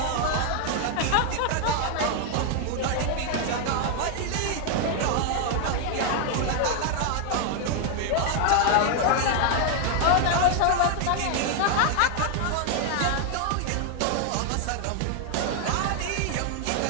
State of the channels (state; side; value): different; both; correlation 0.00